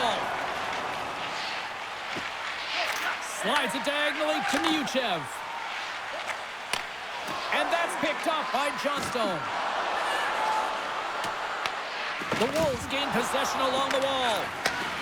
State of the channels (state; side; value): identical; both; correlation 1.00